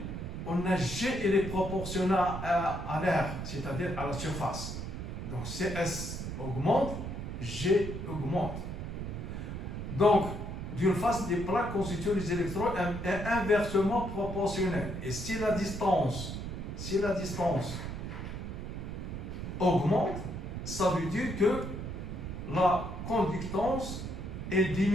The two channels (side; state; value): right; noise; rumble, 6 dB below the sound